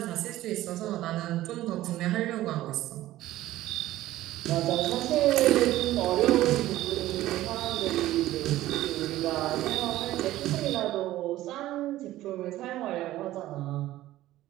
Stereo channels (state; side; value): quieter; left; 15.2 dB